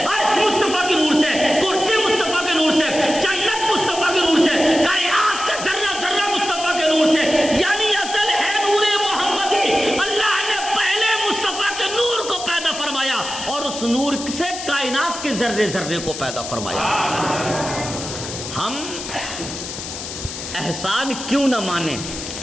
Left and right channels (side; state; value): left; noise; hiss, 8 dB below the sound